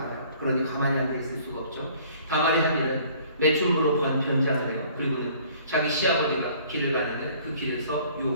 그러니 가만히 앉아 있을 수가 없죠. 다말이 한 일은 매춘부로 변장을 해요. 그리고는 자기 시아버지가 길을 가는데 그 길에서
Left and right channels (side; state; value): both; inverted; correlation -0.55